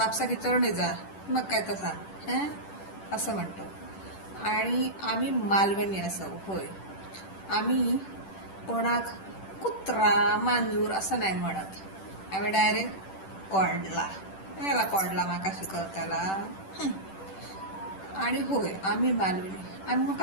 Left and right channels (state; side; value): late; right; 10 ms